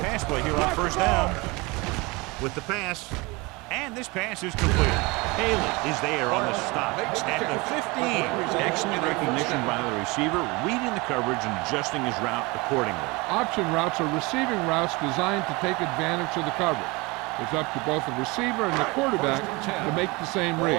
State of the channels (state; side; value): quieter; left; 25.1 dB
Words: Pass play here on first down with the pass. And this pass is complete. Haley is there on the stop at the 15. Excellent recognition by the receiver, reading the coverage and adjusting his route accordingly. Option routes are receiving routes designed to take advantage of the coverage. It's up to both the receiver and the quarterback to make the same